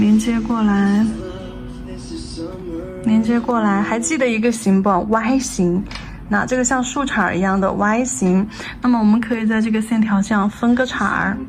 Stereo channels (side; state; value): both; identical; correlation 1.00